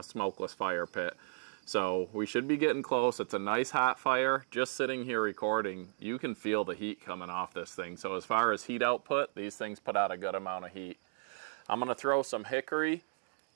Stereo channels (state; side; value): silent; left; digital silence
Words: smokeless fire pit. So we should be getting close. It's a nice hot fire. Just sitting here recording, you can feel the heat coming off this thing. So as far as heat output, these things put out a good amount of heat. I'm gonna throw some hickory.